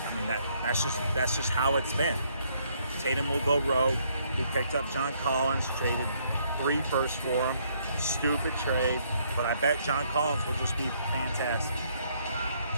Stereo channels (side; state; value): both; inverted; correlation -0.69